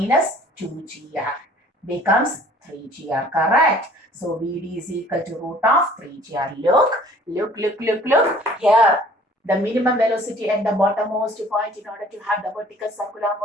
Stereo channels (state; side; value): normal; both; correlation 0.53